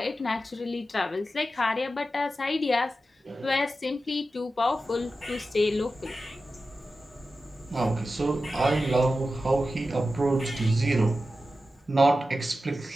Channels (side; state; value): both; normal; correlation 0.92